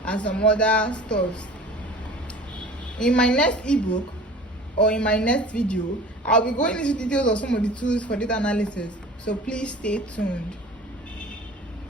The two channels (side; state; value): both; normal; correlation 0.42